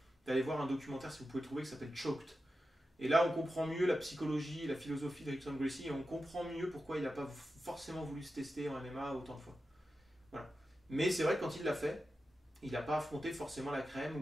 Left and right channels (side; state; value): both; normal; correlation 0.91